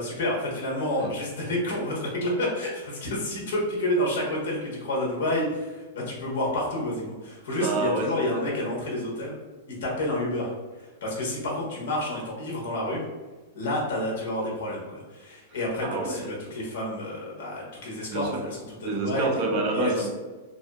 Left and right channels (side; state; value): both; normal; correlation -0.11